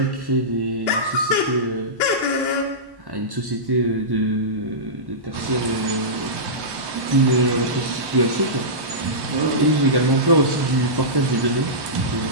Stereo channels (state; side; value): late; left; 1.1 ms